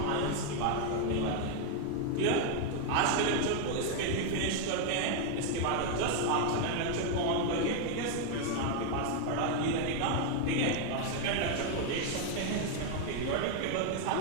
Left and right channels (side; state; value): both; different; correlation 0.01